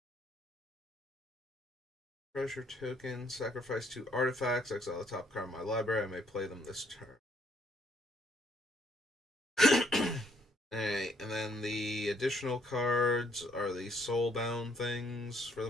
Treasure token, sacrifice 2 artifacts, exile the top card of my library, I may play them this turn. Alright, and then the additional cards are the soulbound things for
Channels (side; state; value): both; normal; correlation 0.67